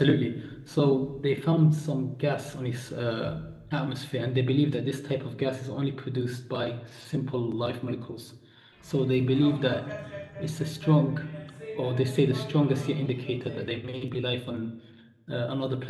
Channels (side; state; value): both; identical; correlation 1.00